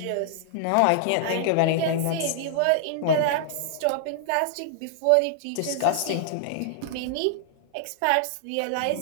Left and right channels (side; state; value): both; different; correlation -0.01